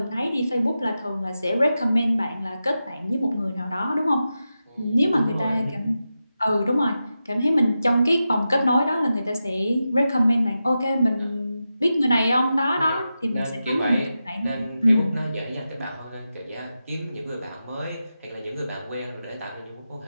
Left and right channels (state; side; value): inverted; both; correlation -0.91